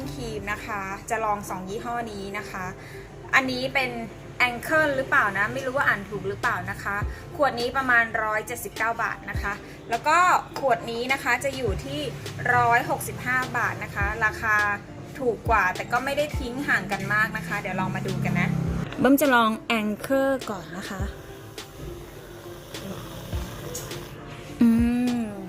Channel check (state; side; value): identical; both; correlation 1.00